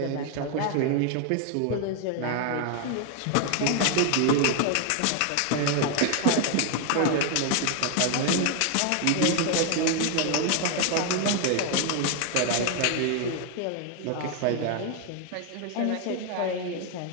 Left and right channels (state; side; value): different; both; correlation 0.01